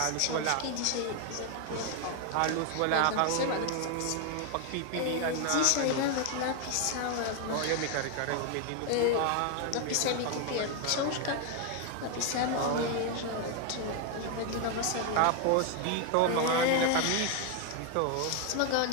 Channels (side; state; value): both; different; correlation 0.01